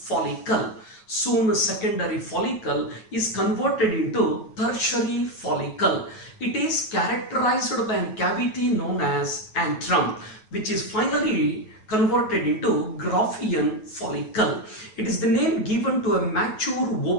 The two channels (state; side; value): late; right; 9.3 ms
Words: Soon secondary follicle is converted into tertiary follicle. It is characterized by a cavity known as antrum, which is finally converted into Graafian follicle. It is the name given to a mature